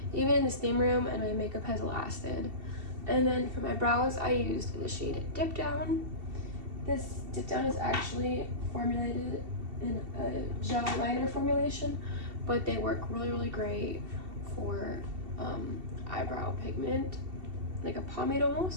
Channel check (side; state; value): left; late; 2.7 ms